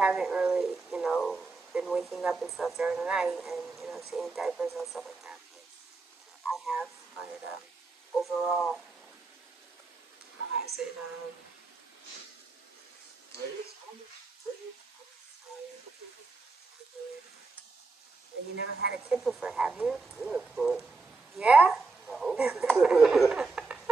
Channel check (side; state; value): left; quieter; 3.9 dB